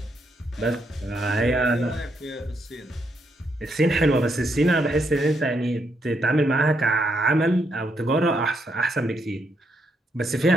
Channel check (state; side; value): normal; both; correlation 0.77